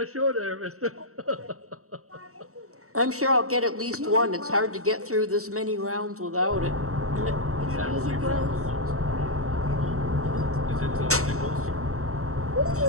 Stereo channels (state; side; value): late; left; 0.64 ms